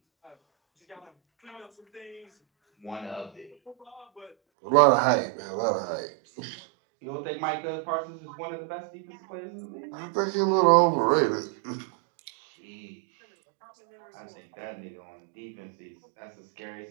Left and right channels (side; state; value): left; drops out; at 4.4 s